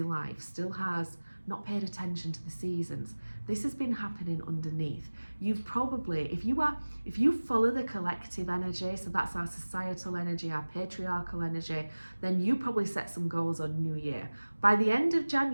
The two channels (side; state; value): both; inverted; correlation -1.00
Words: life, still has not paid attention to the seasons, this has been happening underneath. You've probably, if you follow the collective energy, so that's our societal energy, our patriarchal energy, then you probably set some goals on New Year. By the end of